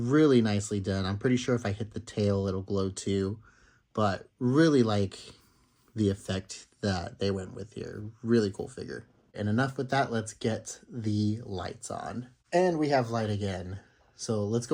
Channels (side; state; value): both; identical; correlation 1.00